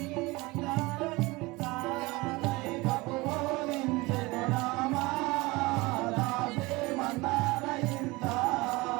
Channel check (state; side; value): quieter; left; 22.8 dB